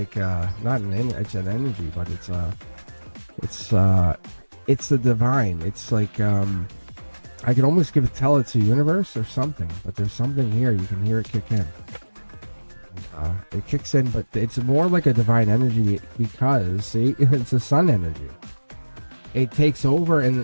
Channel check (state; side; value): inverted; both; correlation -1.00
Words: not it's an energy, but it's the divine. It's like I can almost tell it's a universe or something, but there's something here. You can hear it kick in. It kicks in, but it's more like a divine energy because, see, it's a sun energy. It takes over